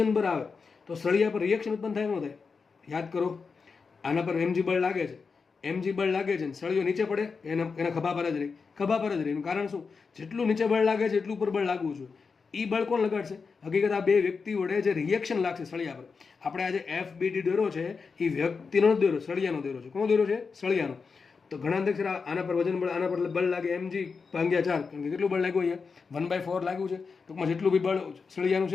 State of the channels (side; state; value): right; quieter; 5.0 dB